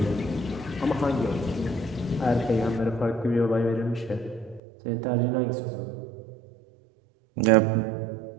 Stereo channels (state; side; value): drops out; left; at 4.6 s